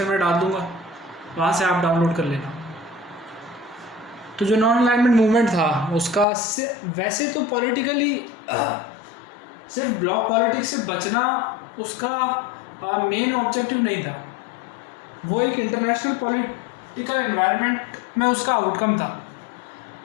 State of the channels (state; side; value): drops out; right; at 6.2 s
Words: में डाल दूँगा, वहाँ से आप डाउनलोड कर लेना। तो जो नॉन अलाइनमेंट मूवमेंट था उसका वैसे तो पॉलिटिकली सिर्फ ब्लॉक पॉलिटिक्स से बचना उसका मेन ऑब्जेक्टिव नहीं था, वो एक इंटरनेशनल पॉलिटिकल एनवायरनमेंट में उसका आउटकम था।